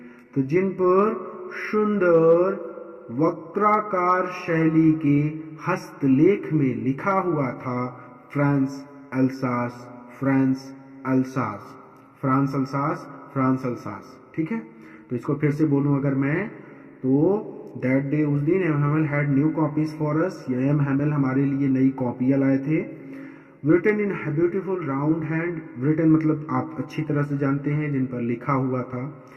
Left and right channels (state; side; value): identical; both; correlation 1.00